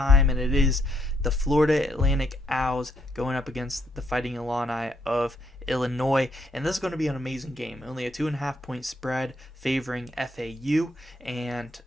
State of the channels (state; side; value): normal; both; correlation 0.73